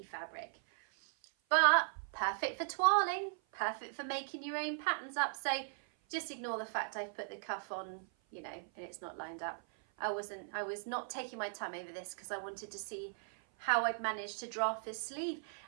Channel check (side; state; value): left; silent; 52 dB below the other